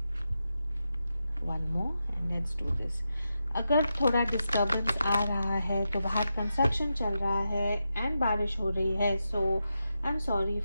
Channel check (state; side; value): inverted; both; correlation -0.88